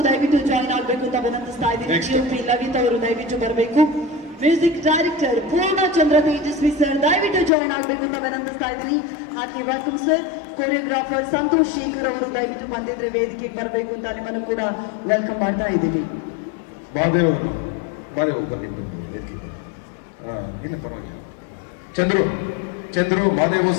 ದಯವಿಟ್ಟು ಜಾಯಿನ್ ಆಗಬೇಕು ಅಂತ ವಿನಂತಿಸ್ತಾ ಇದ್ದೀನಿ. ಲವಿತ್ ಅವರು ದಯವಿಟ್ಟು ಬರಬೇಕು. Music director Poornachandra Tejaswi sir ದಯವಿಟ್ಟು ಜಾಯಿನ್ ಆಗಬೇಕು ಅಂತ ವಿನಂತಿಸ್ತಾ ಇದ್ದೀನಿ. ಹಾಗೆ welcome sir. Choreographer Santhosh Shekar ಅವರು ದಯವಿಟ್ಟು ಬಂದಿದ್ರೆ ವೇದಿಕೆಗೆ ಬರಬೇಕು ಅಂತ ನಿಮ್ಮನ್ನು ಕೂಡ ವೆಲ್ಕಮ್ ಮಾಡ್ತಾ ಇದ್ದೀವಿ. ಚಂದ್ರು ಮಾದೇವು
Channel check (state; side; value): drops out; right; at 7.5 s